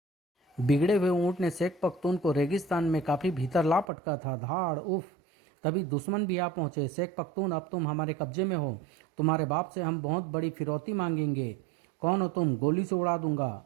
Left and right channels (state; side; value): drops out; left; at 3.9 s